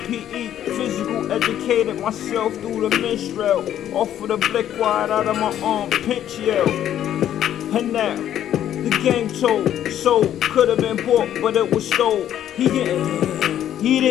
PE. Physical educated myself through the minstrel. Off of the blick wide out of my arm, pinch yell. And now, the game told, sold, could have been bought, but it was stole. He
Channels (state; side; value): quieter; right; 11.0 dB